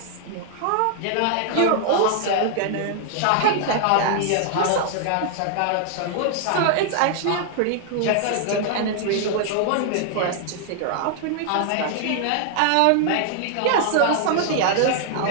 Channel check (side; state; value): both; different; correlation 0.00